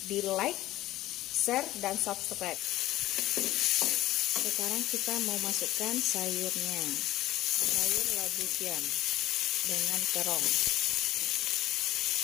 di like, share, dan subscribe. Sekarang kita mau masukkan sayurnya, sayur labu siam dengan terong.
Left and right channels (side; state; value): right; quieter; 15.5 dB